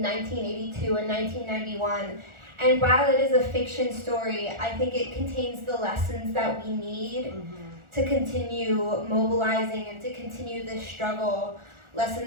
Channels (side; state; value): left; late; 1.4 ms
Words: 1982 and 1991. And while it is a fiction story, I think it contains the lessons that we need to continue mobilizing and to continue this struggle.